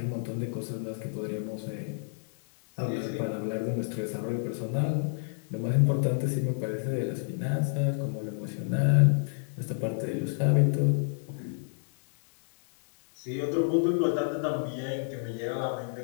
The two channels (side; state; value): right; silent; digital silence